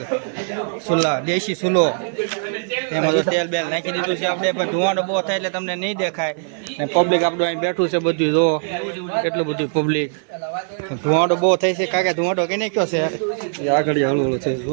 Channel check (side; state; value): left; silent; 56 dB below the other